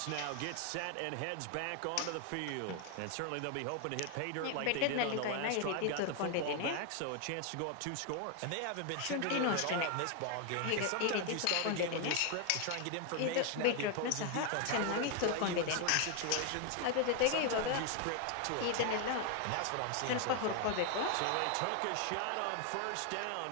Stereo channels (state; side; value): different; both; correlation 0.00